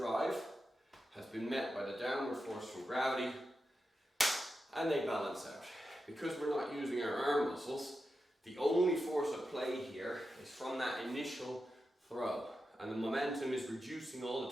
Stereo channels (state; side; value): normal; both; correlation 0.89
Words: has been met by the downward force from gravity, and they balance out. Because we're not using our arm muscles, the only force at play here is from that initial throw, and the momentum is reducing all